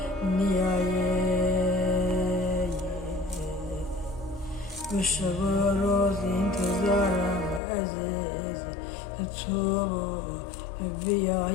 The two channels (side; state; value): right; drops out; at 7.6 s